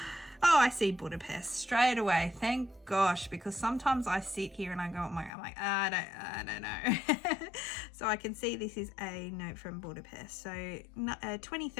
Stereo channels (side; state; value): right; drops out; at 5.3 s